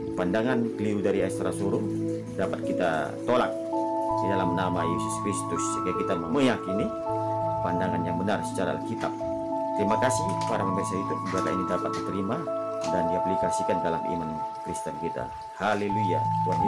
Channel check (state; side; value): identical; both; correlation 1.00